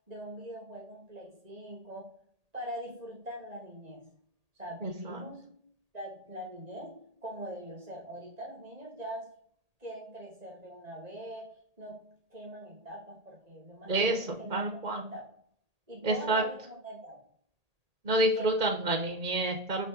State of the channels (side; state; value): left; late; 1.8 ms